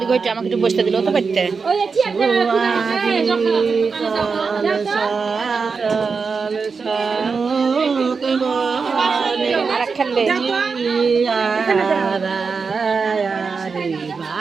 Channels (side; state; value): left; quieter; 5.0 dB